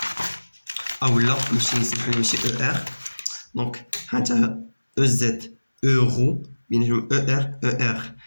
اولا نمشي نسمحلو ماشي او ار. دونك هانتا او زد اورو بيناتهم او ار او ار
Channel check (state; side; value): inverted; both; correlation -1.00